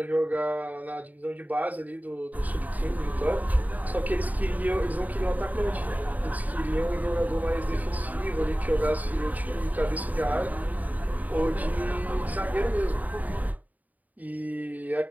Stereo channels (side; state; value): left; late; 0.077 ms